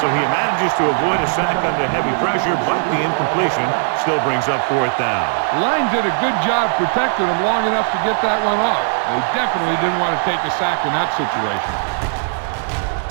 he manages to avoid a sack under heavy pressure, but the incompletion still brings up 4th down. The line did a good job protecting him long enough to get that one off. They definitely didn't want to take a sack in that situation.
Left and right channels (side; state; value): left; silent; 64 dB below the other